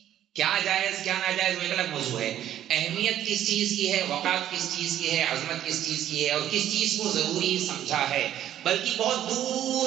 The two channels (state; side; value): quieter; left; 11.5 dB